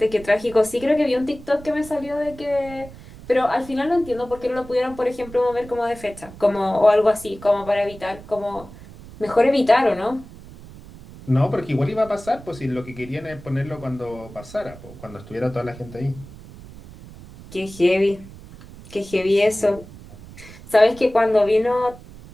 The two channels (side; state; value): right; noise; rumble, 18 dB below the sound